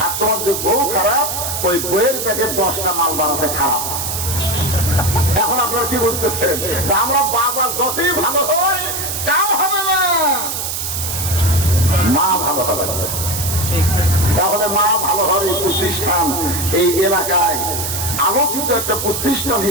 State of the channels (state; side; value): noise; right; hiss, 3 dB below the sound